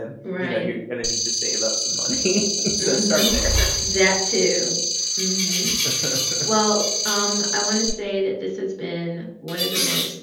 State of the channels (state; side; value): identical; both; correlation 1.00